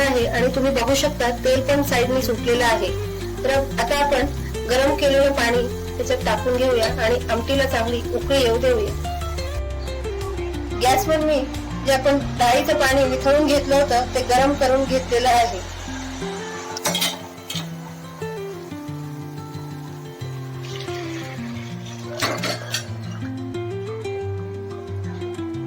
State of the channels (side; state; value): both; identical; correlation 1.00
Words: आणि तुम्ही बघू शकता तेल पण साईडने सुटलेलं आहे. तर आता आपण गरम केलेलं पाणी त्याच्यात टाकून घेऊया आणि आमटीला चांगली उकळी येऊ देऊया. गॅसवर मी जे आपण डाळीचं पाणी वितळून घेतलं होतं ते गरम करून घेतलेलं आहे.